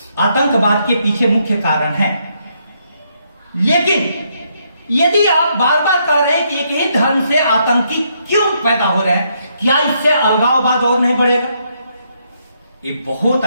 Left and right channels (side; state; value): both; inverted; correlation -0.75